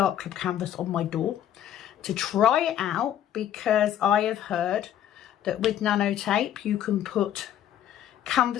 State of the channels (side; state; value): right; quieter; 10.9 dB